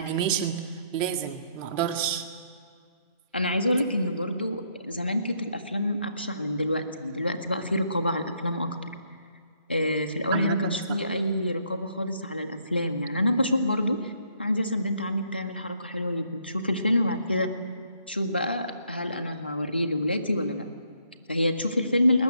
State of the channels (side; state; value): both; inverted; correlation -0.70